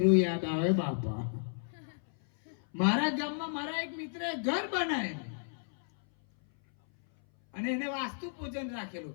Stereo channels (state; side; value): silent; right; 56 dB below the other